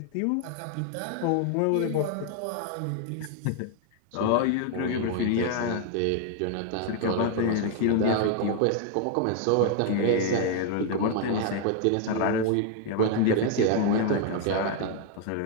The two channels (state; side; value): different; both; correlation 0.00